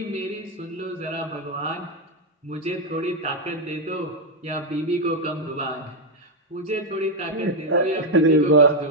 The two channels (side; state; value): both; normal; correlation 0.02